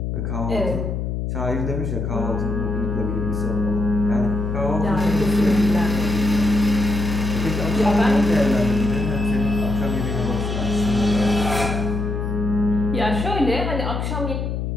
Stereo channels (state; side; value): noise; left; hum, 2 dB below the sound